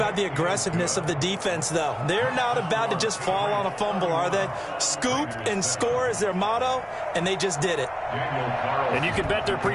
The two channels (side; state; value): both; identical; correlation 1.00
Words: the aggressiveness of the defense, though? They're not about to just fall on a fumble, are they? Scoop and score is their motto, and they just did it. And you can bet they're